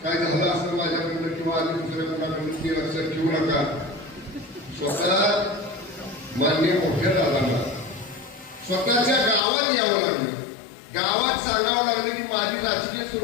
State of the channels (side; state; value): right; drops out; at 9.4 s